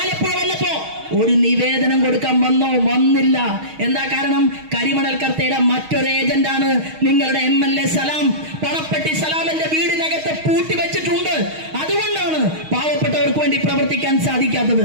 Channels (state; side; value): late; left; 6.4 ms